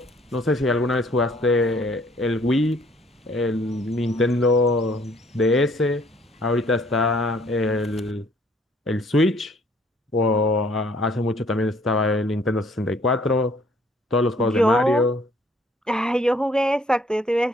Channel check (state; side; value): normal; both; correlation 0.60